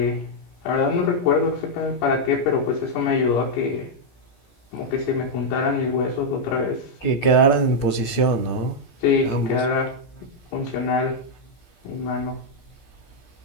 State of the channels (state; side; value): late; right; 17 ms